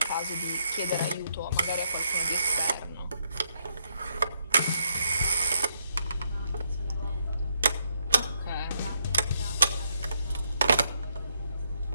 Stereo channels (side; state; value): both; inverted; correlation -0.78